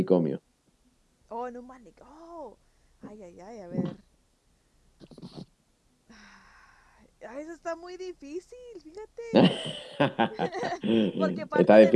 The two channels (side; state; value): both; identical; correlation 1.00